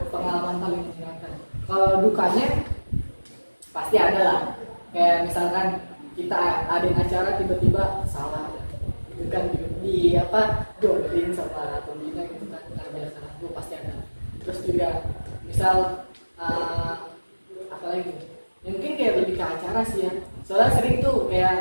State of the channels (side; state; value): both; inverted; correlation -1.00